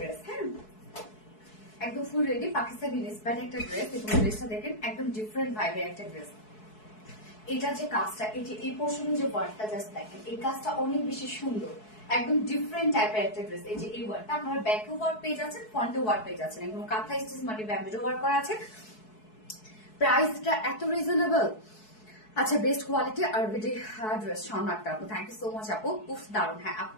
হ্যাঁ, একদম ফুল রেডি পাকিস্তানি ইন্সপায়ার্ড একটা ড্রেস। এবং ড্রেসটা দেখেন একদম ডিফারেন্ট ভাইবের একটা ড্রেস। এটা যে কাজটা, এই যে এই পোর্শনে যে ওয়ার্কটা জাস্ট দেখেন, এই কাজটা অনেক বেশি সুন্দর, একদম ডিফারেন্ট টাইপের একটা ড্রেস। এই যে এই ওয়ার্কটা আপনারা ব্যাকে ওয়ার্ক পেয়ে যাচ্ছেন, ফ্রন্টে ওয়ার্ক পেয়ে যাচ্ছেন, একদম কাঁথা স্টিচ মানে ব্যাম্বো ওয়ার্ক করা আছে। প্রাইসটা এত রিজনেবল। আচ্ছা, বেস্ট কোয়ালিটি আর ভিডি ড্রেস শর্মাটা আপু, থ্যাংক ইউ সো মাচ আপু। খুব দারুণ। হ্যাঁ আপু,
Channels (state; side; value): late; right; 4.7 ms